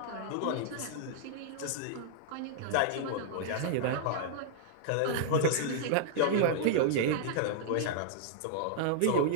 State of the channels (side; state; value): both; different; correlation -0.01